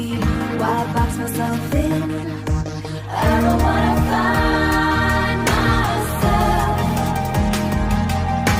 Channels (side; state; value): both; identical; correlation 1.00